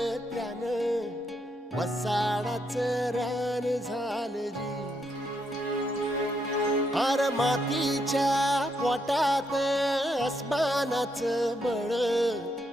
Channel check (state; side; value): normal; both; correlation 0.78